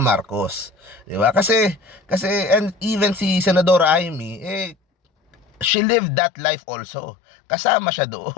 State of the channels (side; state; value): right; drops out; at 5.7 s